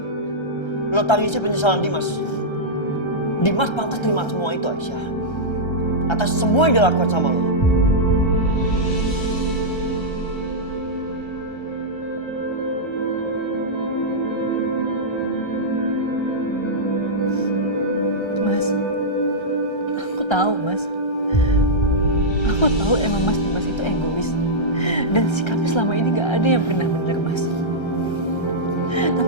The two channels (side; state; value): right; late; 1.3 ms